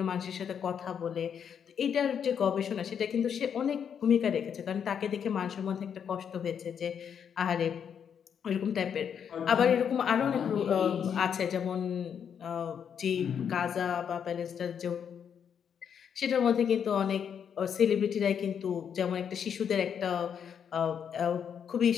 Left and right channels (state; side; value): quieter; right; 7.8 dB